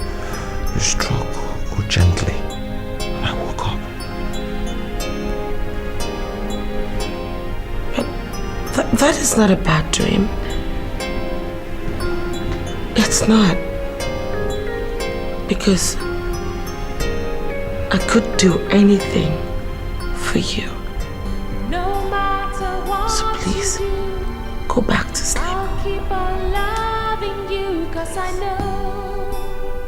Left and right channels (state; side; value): identical; both; correlation 1.00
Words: you struck gently. And I woke up. But that is not a bad dream. It's not. Because I could do anything for you. So please, go back to sleep. I'll keep on loving you, 'cause I know